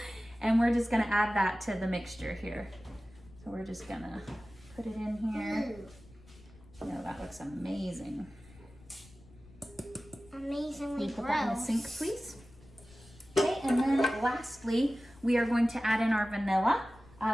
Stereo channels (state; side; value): noise; left; rumble, 23 dB below the sound